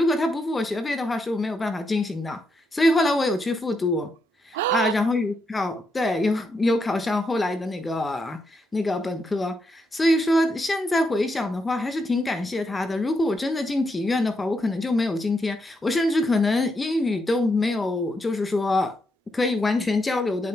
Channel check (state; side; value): normal; both; correlation 0.81